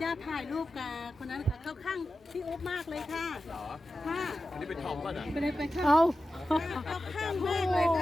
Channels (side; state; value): both; normal; correlation 0.93